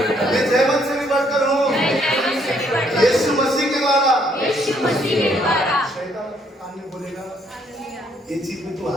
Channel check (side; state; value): both; normal; correlation 0.68